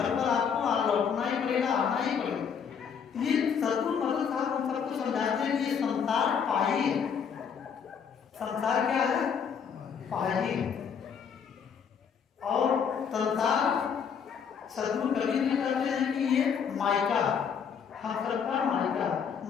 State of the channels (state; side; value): quieter; right; 7.0 dB